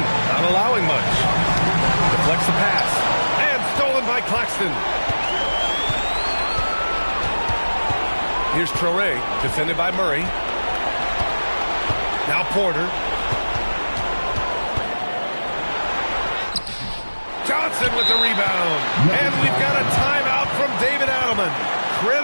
not allowing much. Deflects the pass. And stolen by Claxton. Here's Traore, defended by Murray. Now Porter. Johnson with the rebound. And we've got a timeout from David Adelman.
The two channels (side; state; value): both; inverted; correlation -1.00